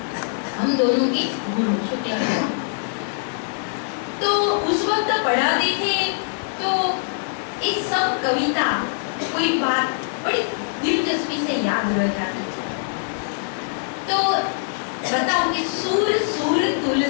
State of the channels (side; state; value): right; silent; digital silence